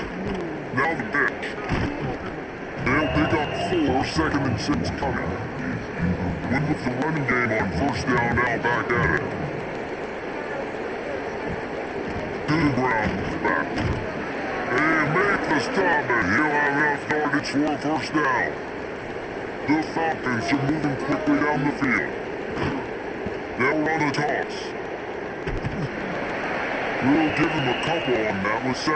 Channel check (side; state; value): both; identical; correlation 1.00